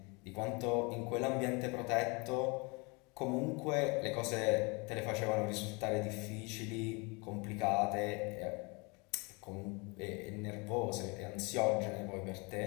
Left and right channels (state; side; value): quieter; right; 29.4 dB